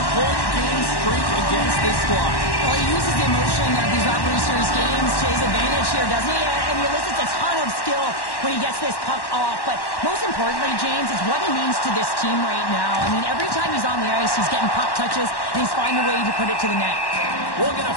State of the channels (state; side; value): late; right; 1.1 ms